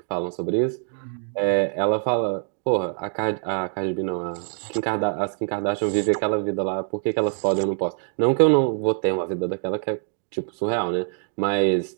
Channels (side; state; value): left; silent; digital silence